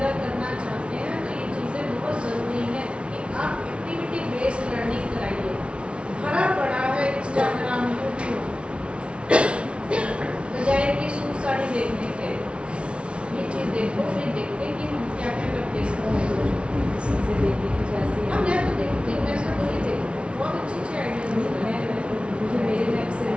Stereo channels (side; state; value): left; late; 0.059 ms